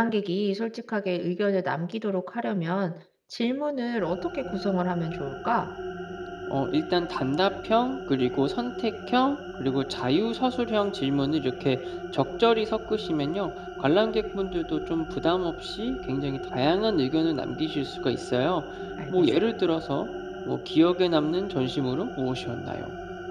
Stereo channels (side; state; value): both; identical; correlation 1.00